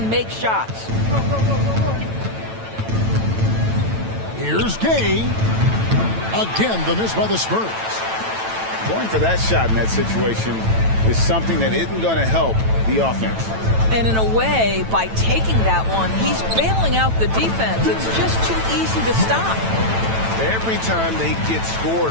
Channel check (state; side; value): late; left; 9.0 ms